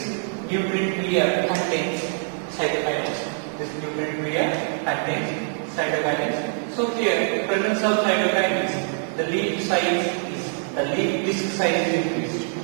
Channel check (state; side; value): silent; left; 58 dB below the other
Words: contains cytokinins. So here, presence of cytokinins, the leaf disc